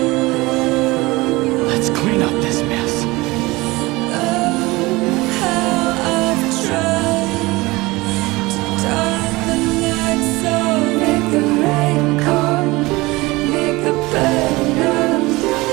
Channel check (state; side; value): quieter; left; 21.7 dB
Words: clean up this mess.